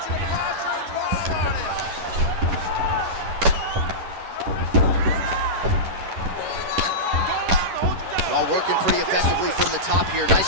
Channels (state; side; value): late; left; 10 ms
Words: Well, working pretty effectively from the top here.